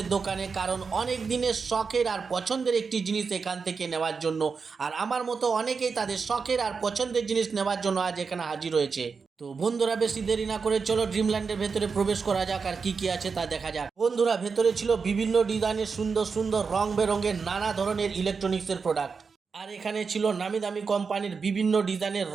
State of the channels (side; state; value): left; quieter; 5.2 dB